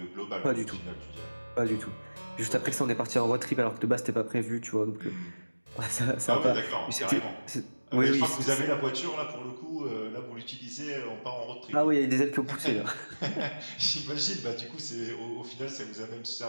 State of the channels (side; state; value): both; inverted; correlation -1.00